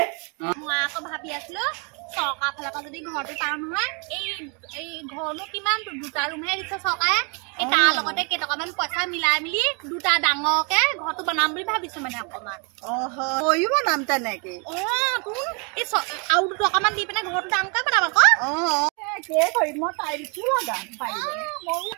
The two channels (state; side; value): quieter; left; 34.6 dB